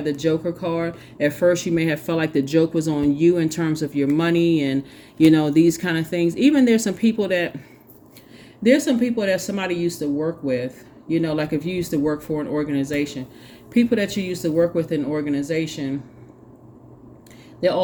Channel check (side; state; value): both; identical; correlation 1.00